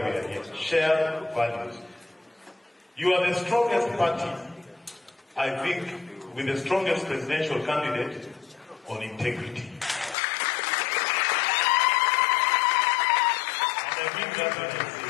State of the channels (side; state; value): right; drops out; at 10.2 s